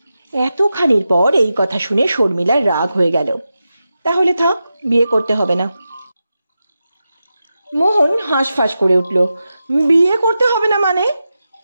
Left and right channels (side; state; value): both; inverted; correlation -0.91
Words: এতখানির পর এই কথা শুনে শর্মিলার রাগ হয়ে গেল। তাহলে থাক, বিয়ে করতে হবে না। মোহন হাঁসফাঁস করে উঠল। বিয়ে করতে হবে না মানে?